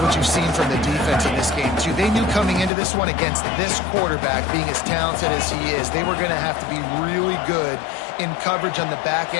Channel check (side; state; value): right; drops out; at 2.7 s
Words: what you've seen from the defense in this game, too. They knew coming into this one against this quarterback, being as talented as he is, they were going to have to be really good in coverage on the back